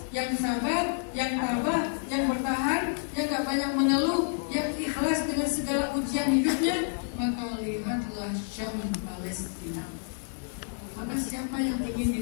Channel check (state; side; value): silent; right; digital silence